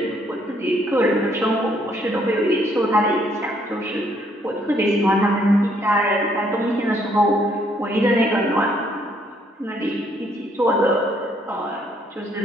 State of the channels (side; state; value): both; normal; correlation 0.68